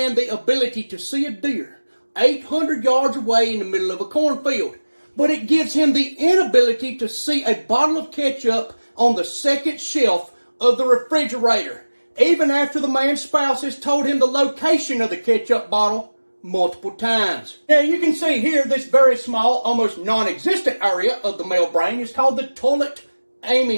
the ability to see a deer 800 yards away in the middle of a cornfield. But it gives him the inability to see a bottle of ketchup on the second shelf of the refrigerator, even after the man's spouse has told him the location of the ketchup bottle multiple times. Now you can see here this very small, almost non-existent area of the male brain is called the toilet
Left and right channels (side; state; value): both; inverted; correlation -1.00